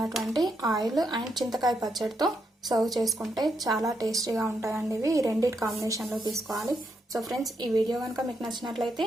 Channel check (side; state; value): both; normal; correlation 0.80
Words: ఆయిల్ అండ్ చింతకాయ పచ్చడితో సర్వ్ చేసుకుంటే చాలా టేస్టీగా ఉంటాయండి. ఇవి రెండింటి కాంబినేషన్లో తీసుకోవాలి. సో ఫ్రెండ్స్, ఈ వీడియో కనుక మీకు నచ్చినట్లయితే